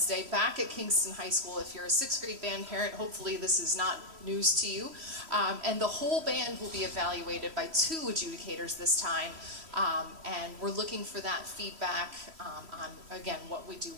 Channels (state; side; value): late; left; 3.1 ms